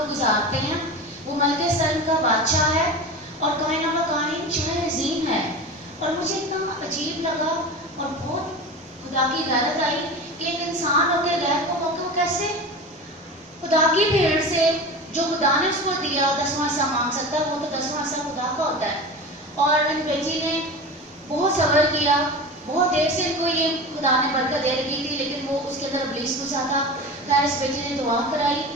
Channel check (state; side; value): normal; both; correlation 0.30